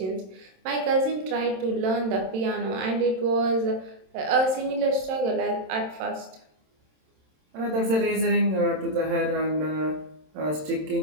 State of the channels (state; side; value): late; left; 27 ms